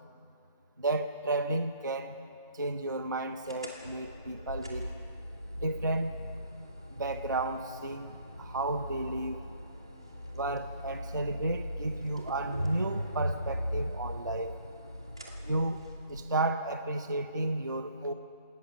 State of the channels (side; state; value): both; inverted; correlation -0.61